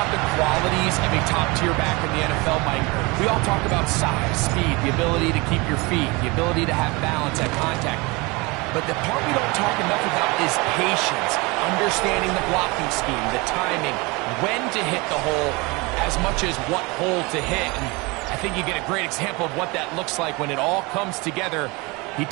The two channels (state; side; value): quieter; left; 25.7 dB